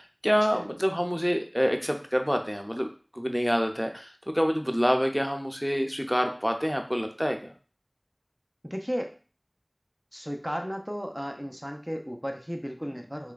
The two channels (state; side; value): identical; both; correlation 1.00